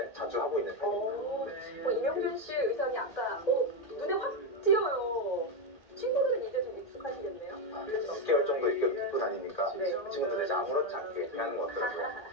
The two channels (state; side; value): late; right; 1.8 ms